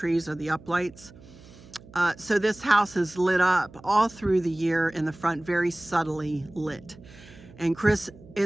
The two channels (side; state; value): right; noise; hum, 22 dB below the sound